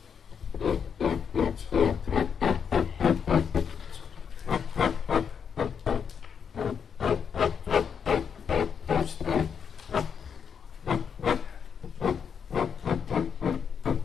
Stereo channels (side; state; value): right; quieter; 7.0 dB